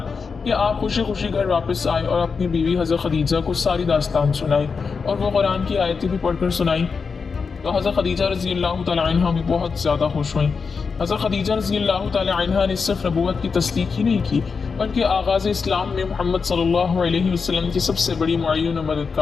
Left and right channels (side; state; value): right; quieter; 5.2 dB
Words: कि आप खुशी खुशी घर वापस आए और अपनी बीवी हज़रत खदीजा को सारी दास्तान सुनाई और वो कुरान की आयतें भी पढ़कर सुनाई। तो हज़रत खदीजा रज़ी अल्लाह तआला अन्हा भी बहुत ज़्यादा खुश हुई। हज़रत खदीजा रज़ी अल्लाह तआला अन्हा ने सिर्फ नबूवत की तस्दीक ही नहीं की बल्कि आगाज़ इस्लाम में मोहम्मद सल्लल्लाहु अलैहि वसल्लम की सबसे बड़ी मुअय्यन और